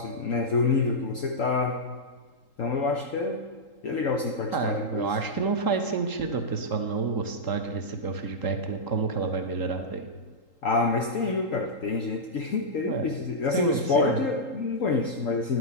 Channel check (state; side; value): late; right; 3.8 ms